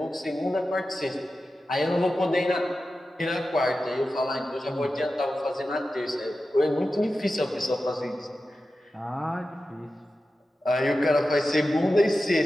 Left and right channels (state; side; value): normal; both; correlation 0.93